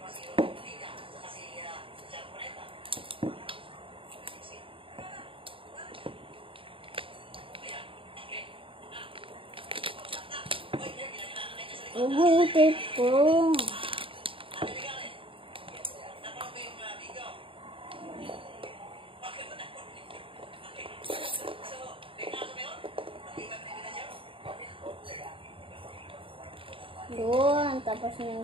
Ubutin po. Doon, tapos yung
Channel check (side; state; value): left; late; 0.26 ms